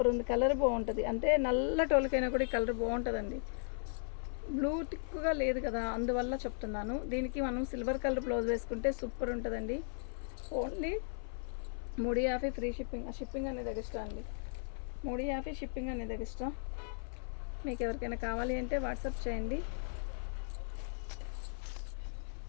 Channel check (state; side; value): silent; right; 53 dB below the other